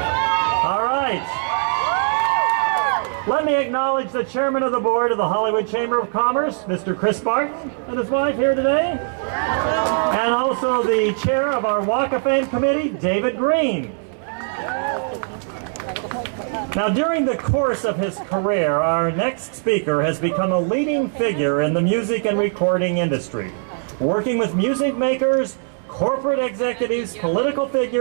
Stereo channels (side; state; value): left; silent; 65 dB below the other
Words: All right. Let me acknowledge the Chairman of the Board of the Hollywood Chamber of Commerce, Mr. Chris Barton, and his wife here today. And also the Chair of our Walk of Fame Committee, David Green. Now, during the course of his career, our next speaker has become a leading figure in the music and recording industry, working with music makers, corporate executives, political